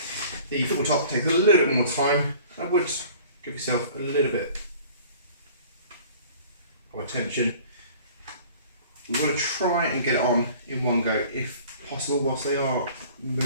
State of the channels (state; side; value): inverted; both; correlation -0.48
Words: The football top takes a little bit more time. I would give yourself a little bit of attention. We want to try and get it on in one go if possible, whilst they are